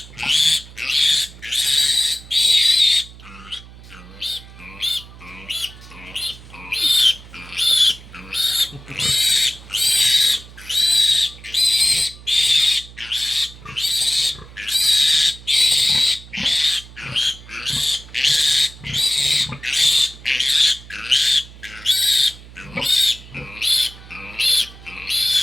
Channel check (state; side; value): noise; right; hum, 19 dB below the sound